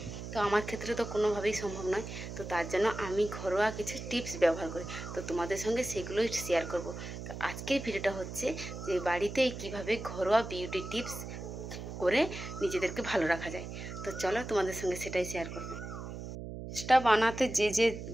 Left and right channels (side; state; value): right; noise; hum, 8 dB below the sound